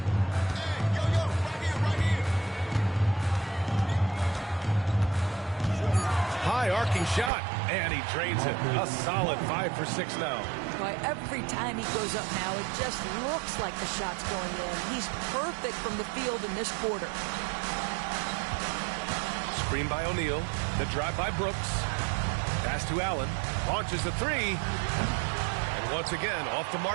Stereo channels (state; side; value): drops out; left; at 7.3 s